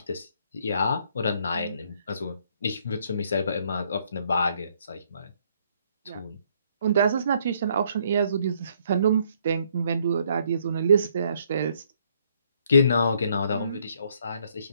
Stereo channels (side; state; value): both; inverted; correlation -0.68